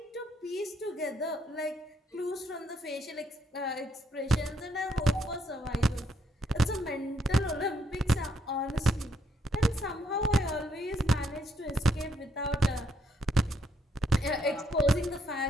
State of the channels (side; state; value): both; normal; correlation 0.74